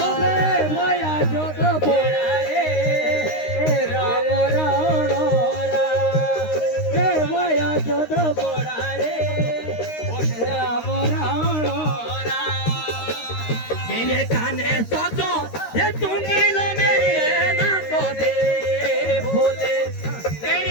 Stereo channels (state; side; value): late; right; 13 ms